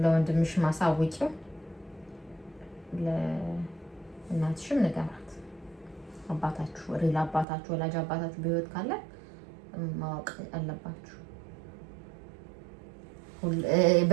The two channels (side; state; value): left; drops out; at 7.5 s